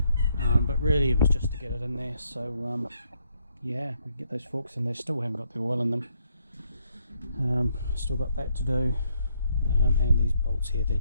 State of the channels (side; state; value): both; inverted; correlation -0.73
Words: but really it was just to get it in there. So yeah, we get those forks in there. Still haven't got the oil in them. Still got that to do, and these bolts here, they're